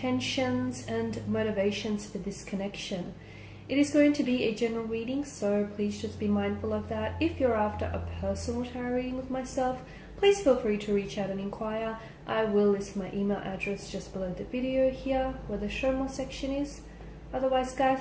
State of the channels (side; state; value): both; identical; correlation 1.00